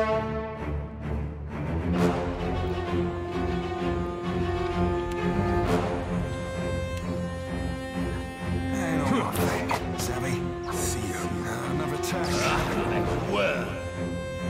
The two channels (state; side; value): identical; both; correlation 1.00